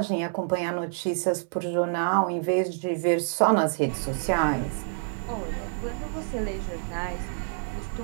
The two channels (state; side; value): silent; left; digital silence